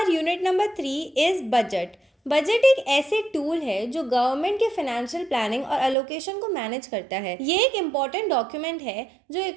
unit number 3 is budget. Budget एक ऐसे टूल है जो गवर्नमेंट के फाइनेंशियल प्लानिंग और एलोकेशन को मैनेज करता है। ये एक इम्पॉर्टेंट डॉक्यूमेंट है जो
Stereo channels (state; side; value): drops out; left; at 6.0 s